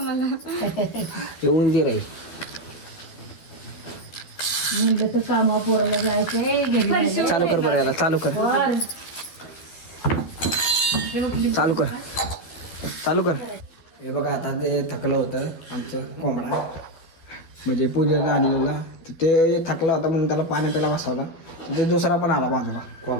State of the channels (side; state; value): right; late; 12 ms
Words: हे उंदीर आहे. कामा पोराला जायचंय चालू कर बरं याला चालू कर चालू कर चालू कर. हे बघा आता ते थकलं होतं आमचं कोंबडा म्हणजे पूजेला आणलेला तर ते थकला होता म्हणून त्याला पाणी प्यायला बसवला ते दुसरा पण आला बाजूला.